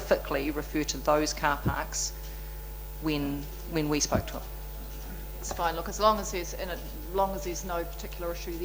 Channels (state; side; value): identical; both; correlation 1.00